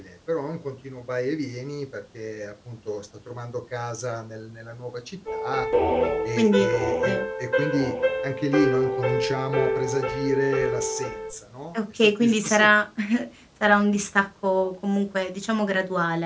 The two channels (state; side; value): identical; both; correlation 1.00